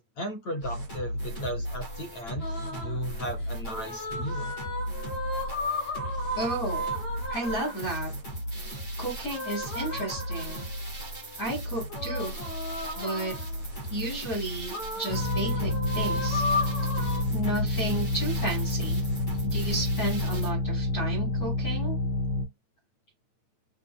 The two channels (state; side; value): late; right; 8.9 ms